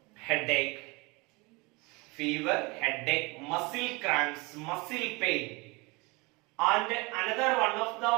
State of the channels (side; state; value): left; quieter; 26.1 dB